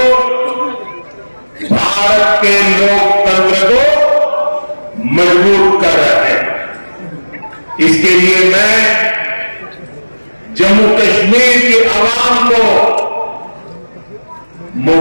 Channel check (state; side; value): inverted; both; correlation -1.00